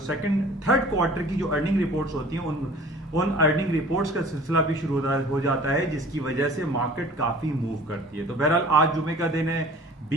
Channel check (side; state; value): both; normal; correlation 0.47